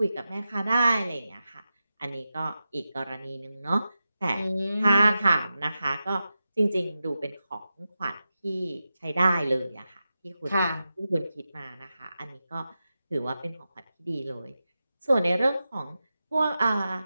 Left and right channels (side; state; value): both; inverted; correlation -0.92